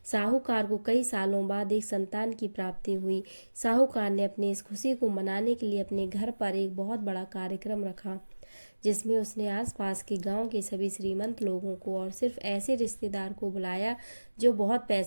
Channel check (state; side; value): inverted; both; correlation -1.00